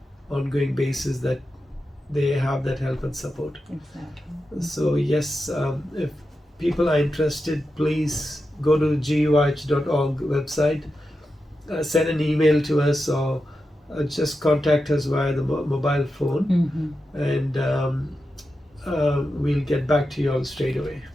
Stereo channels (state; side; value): normal; both; correlation 0.90